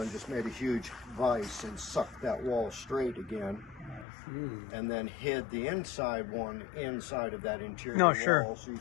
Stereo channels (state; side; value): drops out; right; at 4.0 s